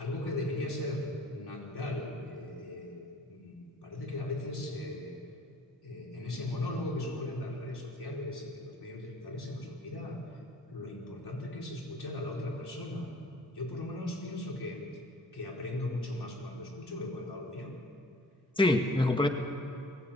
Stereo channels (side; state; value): both; normal; correlation 0.52